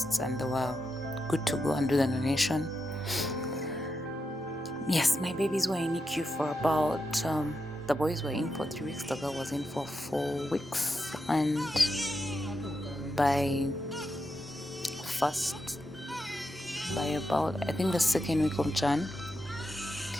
and they were good to go and do the donation. Yes, my babies were in NICU for about, the boys were in for 3 weeks, the girl was in for 4 weeks. And by about, I think the 2nd week of Jan,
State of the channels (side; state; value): both; normal; correlation 0.86